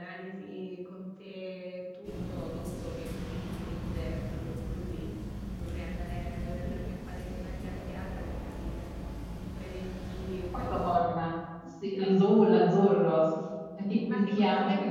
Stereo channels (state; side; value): identical; both; correlation 1.00